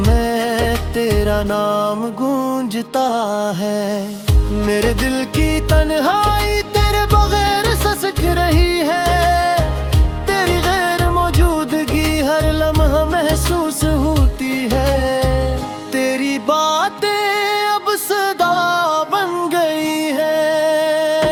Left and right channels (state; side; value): identical; both; correlation 1.00